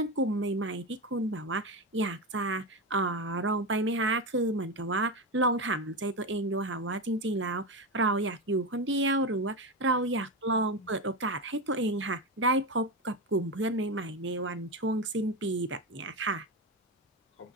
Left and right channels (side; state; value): both; normal; correlation 0.16